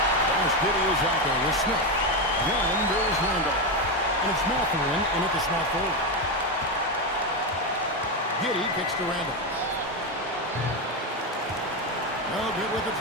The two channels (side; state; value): both; normal; correlation 0.11